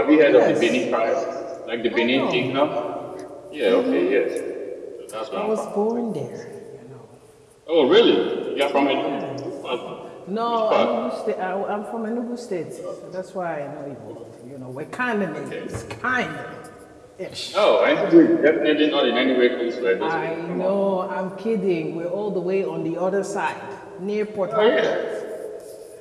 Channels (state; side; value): identical; both; correlation 1.00